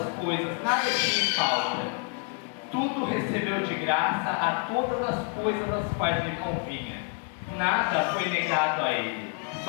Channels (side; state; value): right; quieter; 35.1 dB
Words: as coisas, nada tinha falta. Tudo recebeu de graça a todas as coisas às quais lhe convinha. Nada foi negado a ele,